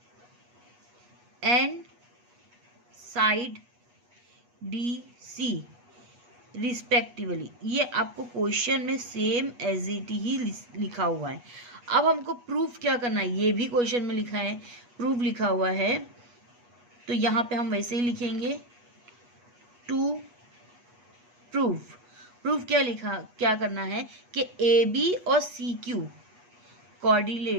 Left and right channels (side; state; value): left; late; 8.3 ms